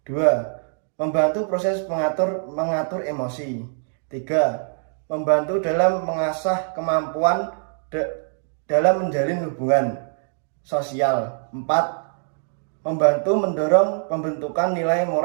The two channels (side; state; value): left; silent; 63 dB below the other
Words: 2. Membantu proses mengatur emosi. 3. Membantu dalam mengasah kemampuan dalam menjalin hubungan sosial. 4. Membantu mendorong pembentukan nilai